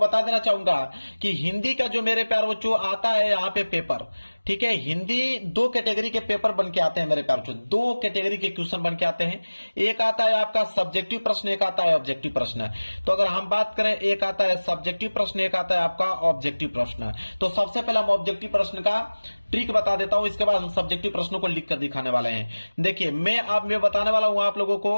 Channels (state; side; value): inverted; both; correlation -1.00